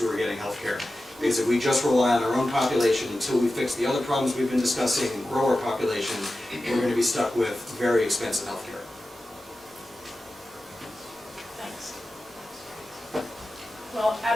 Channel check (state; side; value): normal; both; correlation 0.94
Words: are getting healthcare. Because if we just rely on our own population until we fix the other problems we've been discussing and grow our population, we're going to be stuck with very expensive healthcare. Thanks. Well,